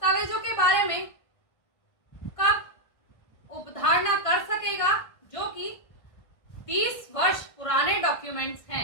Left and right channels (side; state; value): right; late; 1.6 ms